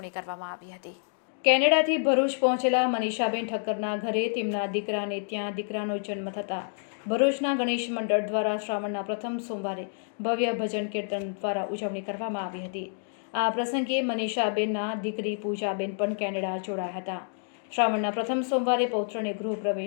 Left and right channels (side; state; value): right; silent; digital silence